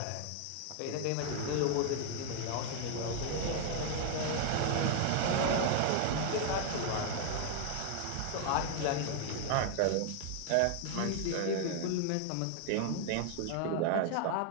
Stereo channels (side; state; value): both; different; correlation 0.00